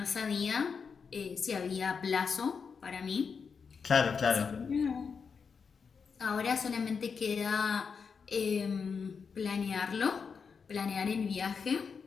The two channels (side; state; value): right; quieter; 5.8 dB